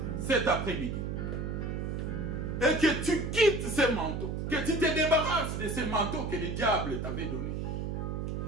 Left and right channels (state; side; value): noise; right; hum, 3 dB below the sound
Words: cet après-midi, et que tu quittes ces manteaux, que tu te débarrasses de ces manteaux que le diable t'avait donnés,